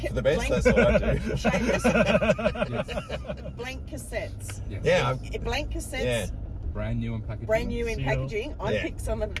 for the best? blank- That's what I do. Seamus, Yes. blank cassettes. Yes. Yeah, Blank cassettes. brand new in packaging. Brand new in Seal. packaging. I Yeah. picked some of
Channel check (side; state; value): both; identical; correlation 1.00